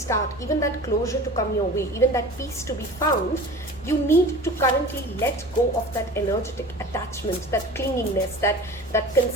even that closure to come your way, even that peace to be found, you need to currently let go of that energetic attachment, that clinginess, that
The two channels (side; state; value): both; normal; correlation 0.38